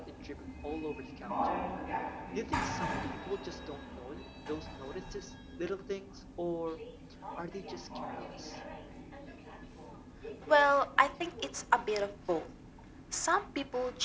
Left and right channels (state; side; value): identical; both; correlation 1.00